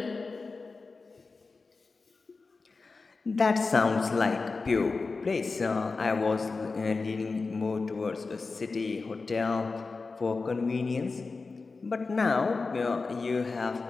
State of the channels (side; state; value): right; quieter; 4.1 dB